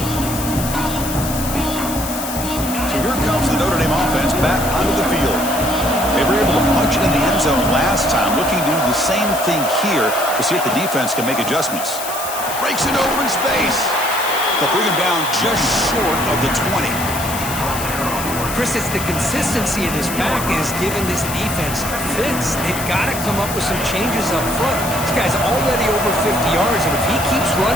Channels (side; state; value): left; noise; hiss, 7 dB below the sound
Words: So here comes the Notre Dame offense back onto the field. They were able to punch it in the end zone last time, looking to do the same thing here to see if the defense can make adjustments. Breaks it open space. They'll bring him down just short of the 20. Chris, it's the consistency of this back is giving this defense fits. They've got to come up with some changes up front. This guy's already over 50 yards, and if he keeps